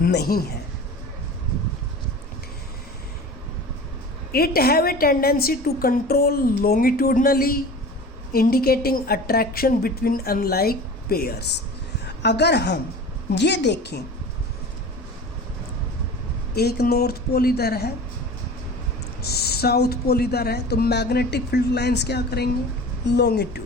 नहीं है। It have a tendency to control longitudinally, indicating attraction between unlike pairs। अगर हम ये देखें, एक नॉर्थ पोल इधर है, साउथ पोल इधर है, तो मैग्नेटिक फील्ड लाइंस क्या करेंगे?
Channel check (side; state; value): both; normal; correlation 0.37